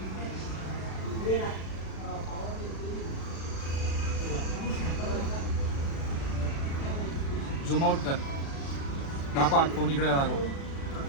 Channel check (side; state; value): right; late; 36 ms